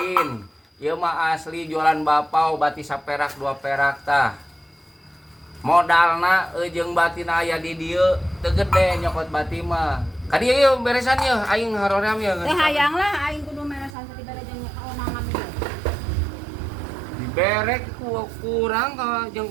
Ieu mah asli jualan bapau bati saperak 2 perak tah. Modalna jeung batina aya di dieu teu gede nyokot bati mah. Ka dieu ieu beresan ieu aing haroream ieu. Teh hayang lah aing kudu meresan tadi bere jeung kaomangan ieu. Diberek kurang ka jeung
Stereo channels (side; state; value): left; drops out; at 13.9 s